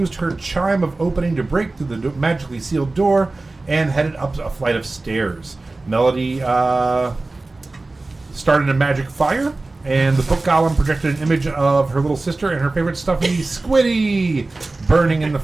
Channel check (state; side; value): quieter; left; 3.2 dB